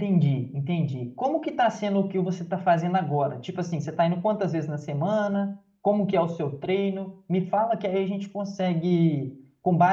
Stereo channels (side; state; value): both; identical; correlation 1.00